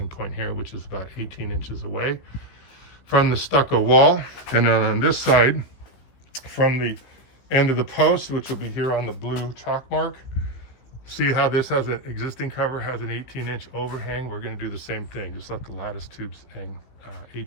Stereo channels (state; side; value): late; right; 16 ms